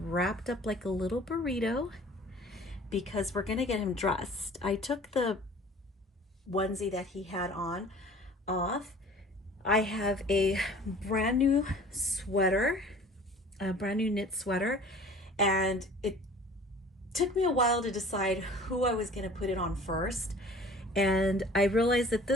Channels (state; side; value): normal; both; correlation 0.47